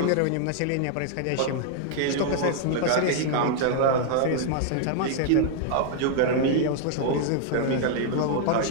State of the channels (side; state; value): both; different; correlation 0.00